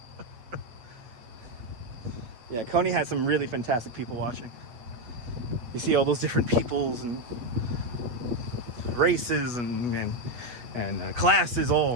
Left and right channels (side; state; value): left; late; 8.3 ms